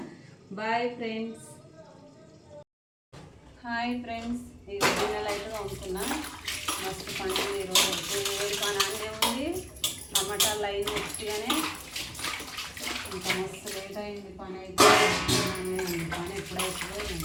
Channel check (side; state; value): both; identical; correlation 1.00